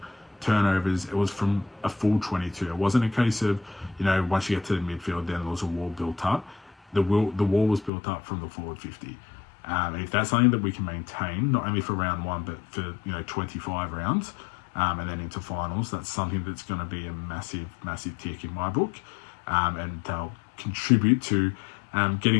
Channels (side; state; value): right; drops out; at 7.9 s